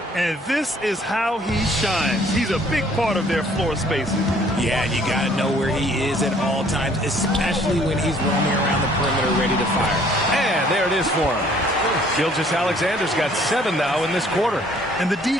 And this is how he shines. He's a big part of their floor spacing. Yeah, and you got to know where he is at all times, especially when he's roaming around the perimeter ready to fire. And there it is for him. Gilgeous-Alexander's got 7 now in this quarter. And the D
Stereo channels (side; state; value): both; normal; correlation 0.59